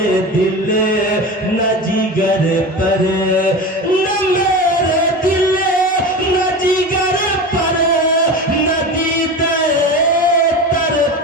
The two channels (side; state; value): both; normal; correlation 0.28